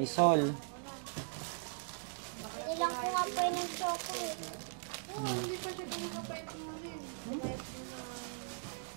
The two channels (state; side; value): silent; left; digital silence